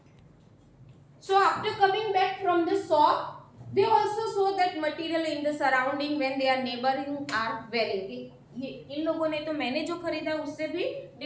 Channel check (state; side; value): identical; both; correlation 1.00